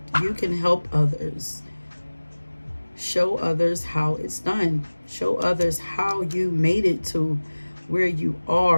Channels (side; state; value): both; inverted; correlation -1.00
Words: You can help others. Show others how it's done. Show others how you made it to where you